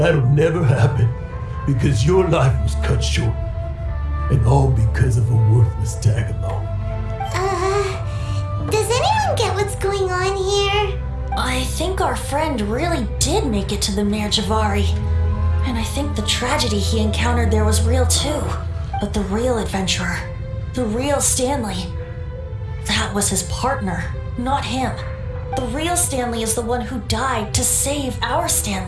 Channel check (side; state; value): both; identical; correlation 1.00